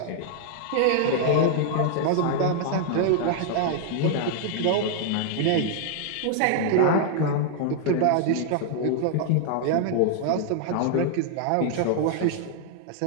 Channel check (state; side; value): different; both; correlation 0.00